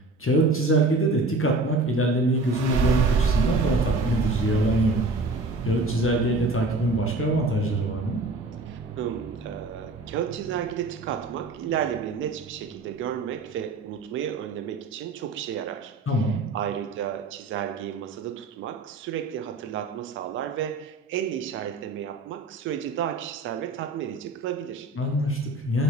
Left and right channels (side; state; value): left; quieter; 3.1 dB